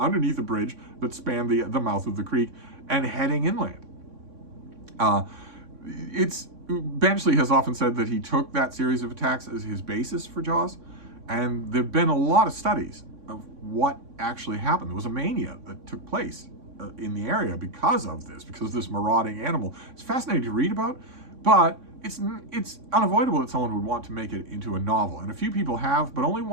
a bridge that spanned the mouth of the creek and heading inland. Benchley has often said that he took that series of attacks as his basis for Jaws, and there have been a lot of studies of what actually happened. There was a mania that took place in the area because of this marauding animal. It's fascinating to read about, but it's unavoidable that someone would want to make it into a novel, and a few people have, but only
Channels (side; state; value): left; late; 3.6 ms